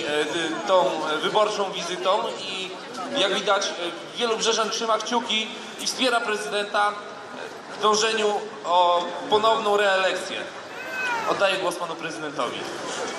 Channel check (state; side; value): identical; both; correlation 1.00